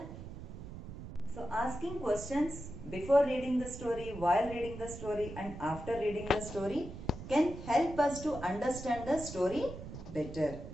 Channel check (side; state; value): right; noise; rumble, 11 dB below the sound